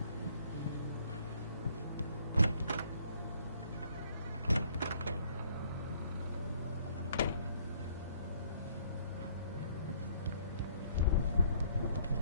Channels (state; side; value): inverted; both; correlation -0.62